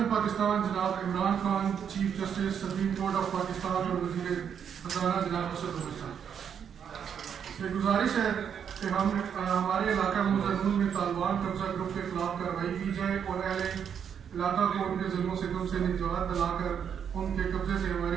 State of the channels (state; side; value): quieter; left; 7.9 dB